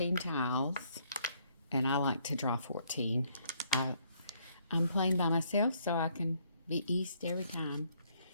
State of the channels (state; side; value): inverted; both; correlation -0.68